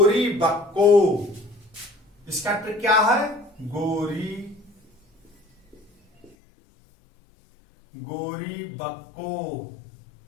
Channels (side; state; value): right; drops out; at 6.4 s